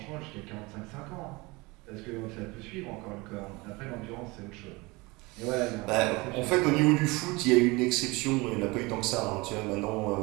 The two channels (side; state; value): left; quieter; 24.3 dB